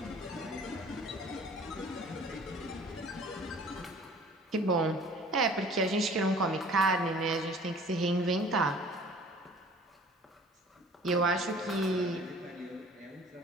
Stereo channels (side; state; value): both; normal; correlation 0.49